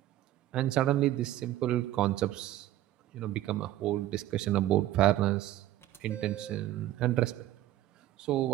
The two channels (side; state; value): left; quieter; 14.0 dB